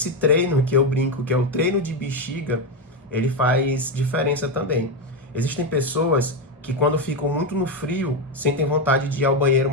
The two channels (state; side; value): normal; both; correlation 0.09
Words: treino que eu brinco, que é o treino de bexiga, ele faz diferença também. Existem pessoas que quando ficam muito no frio, sentem vontade de ir ao banheiro